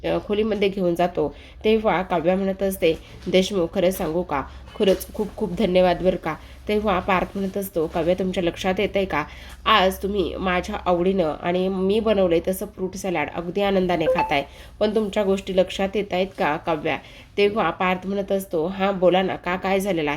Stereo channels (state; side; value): identical; both; correlation 1.00